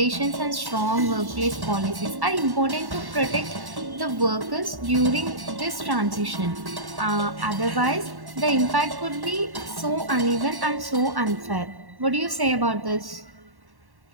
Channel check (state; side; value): late; left; 1.1 ms